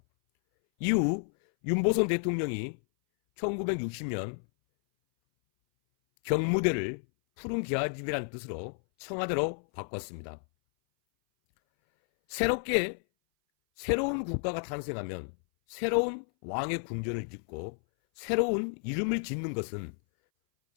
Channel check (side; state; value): right; silent; 57 dB below the other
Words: 이후 윤보선 대통령이 1960년 경무대를 푸른 기와집이라는 뜻으로 청와대로 바꿨습니다. 새로운 국가가 탄생하면 새로운 왕의 궁전을 짓고 새로운 이름을 짓는 것은